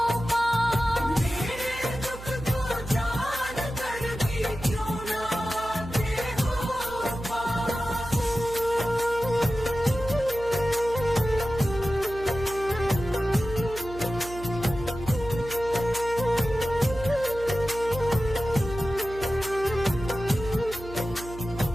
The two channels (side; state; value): right; noise; hum, 13 dB below the sound